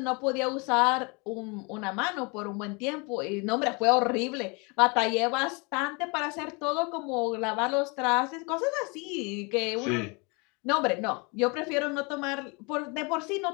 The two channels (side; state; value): right; quieter; 30.5 dB